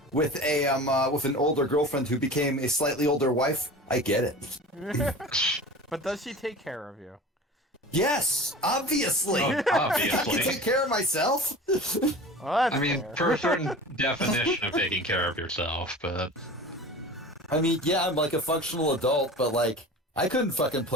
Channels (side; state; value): both; normal; correlation 0.36